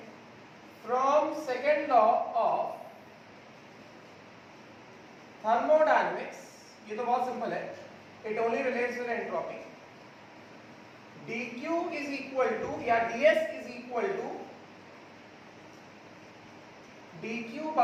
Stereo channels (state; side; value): identical; both; correlation 1.00